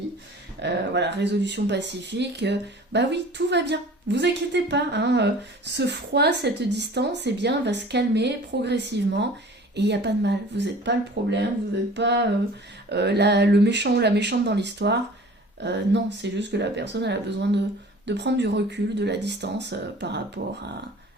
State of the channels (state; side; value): normal; both; correlation 0.45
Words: Voilà, résolution pacifique. Bah oui, tout va bien. Vous inquiétez pas, hein, ce froid, cette distance, eh bien, va se calmer progressivement. Et il n'y a pas de mal. Vous n'êtes pas le problème, vous n'êtes pas le méchant ou la méchante dans l'histoire. Non, c'est juste que la personne elle a besoin de prendre du recul, de la distance par rapport